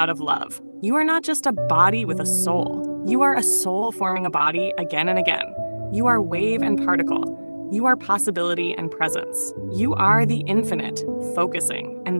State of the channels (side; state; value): both; inverted; correlation -1.00